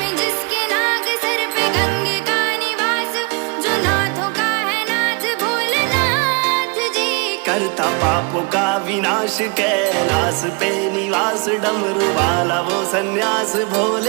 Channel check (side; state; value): left; quieter; 33.1 dB